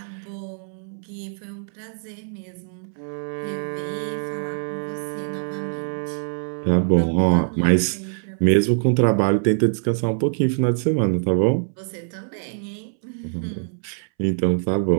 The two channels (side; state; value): left; silent; 63 dB below the other